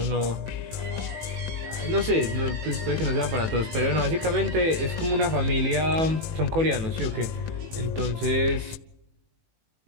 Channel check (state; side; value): late; left; 18 ms